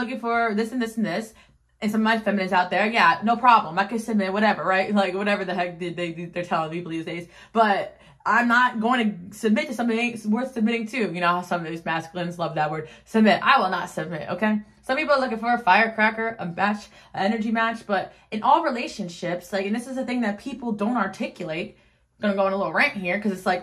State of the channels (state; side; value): identical; both; correlation 1.00